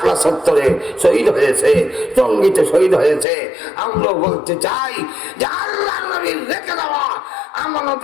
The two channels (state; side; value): drops out; right; at 3.2 s